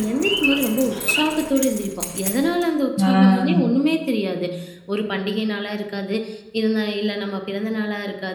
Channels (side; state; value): both; identical; correlation 1.00